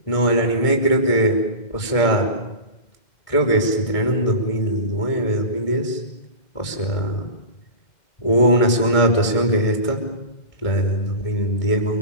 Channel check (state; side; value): late; right; 2.1 ms